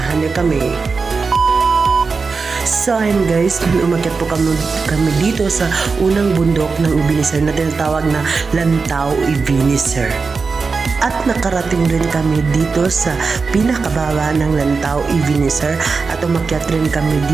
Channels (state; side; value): quieter; left; 4.6 dB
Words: nyo kami. So ayun guys, umakyat po kami dito sa unang bundok ng Ebenezer na tinatawag na Lantaw Ebenezer. At nakarating din kami dito sa pinakababa ng Lantaw Ebenezer at umakyat rin kami